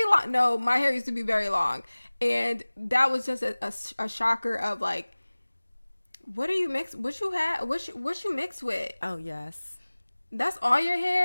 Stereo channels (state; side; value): inverted; both; correlation -1.00